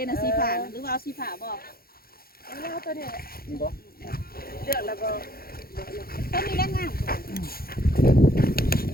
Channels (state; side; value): late; right; 0.44 ms